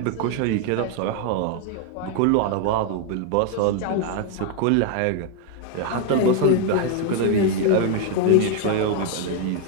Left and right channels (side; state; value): both; different; correlation 0.01